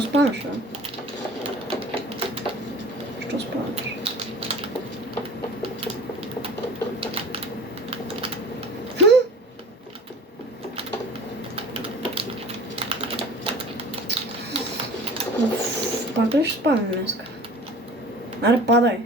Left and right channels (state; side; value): normal; both; correlation 0.43